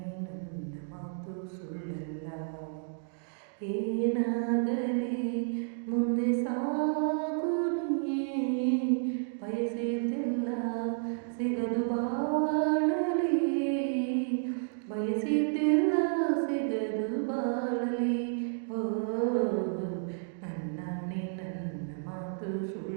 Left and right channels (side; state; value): left; silent; digital silence